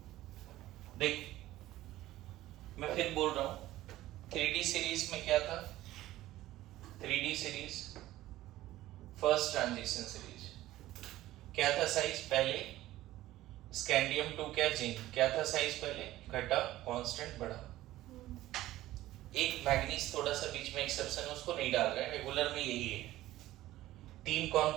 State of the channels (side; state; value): left; quieter; 15.6 dB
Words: देख, मैं फिर बोल रहा हूं, 3D सीरीज में क्या था? 3D series first transition series क्या था साइज? पहले स्कैंडियम 2 क्या जिंक क्या था साइज? पहले घटा, कांस्टेंट बढ़ा। एक मैग्नीज थोड़ा सा बीच में एक्सेप्शन है, उसको नहीं डाल रहे हैं, रेगुलर में यही है। तीन कौन